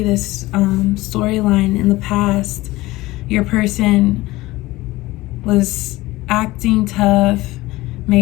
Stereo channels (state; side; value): quieter; right; 19.0 dB